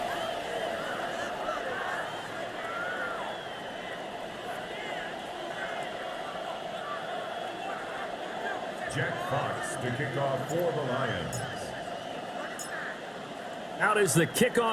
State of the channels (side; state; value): both; identical; correlation 1.00